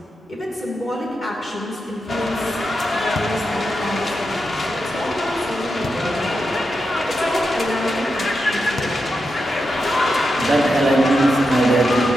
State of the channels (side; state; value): both; normal; correlation 0.87